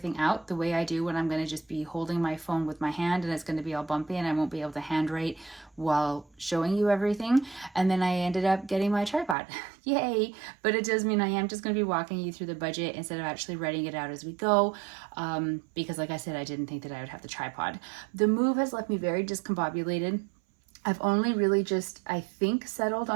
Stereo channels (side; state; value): left; drops out; at 9.3 s